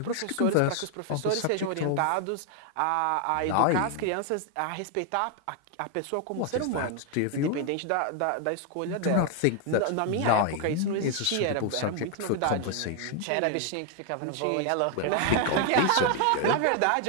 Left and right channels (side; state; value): both; different; correlation 0.00